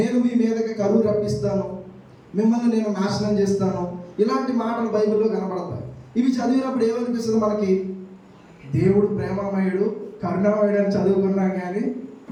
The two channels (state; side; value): identical; both; correlation 1.00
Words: మీ మీదకి కరువు రప్పిస్తాను, మిమ్మల్ని నేను నాశనం చేస్తాను, ఇలాంటి మాటలు బైబిల్లో కనపడతాయి. ఇవి చదివినప్పుడు ఏమనిపిస్తుంది మనకి? దేవుడు ప్రేమమయుడు, కరుణామయుడు అని చదువుకున్నాం, కానీ